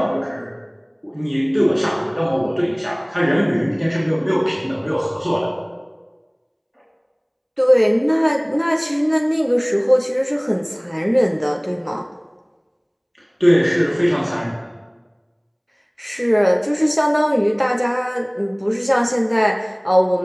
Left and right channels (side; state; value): both; identical; correlation 1.00